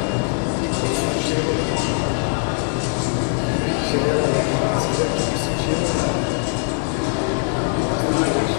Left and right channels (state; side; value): silent; right; 62 dB below the other